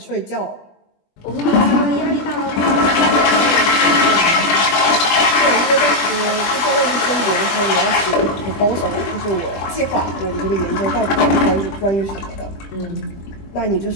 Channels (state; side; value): late; right; 20 ms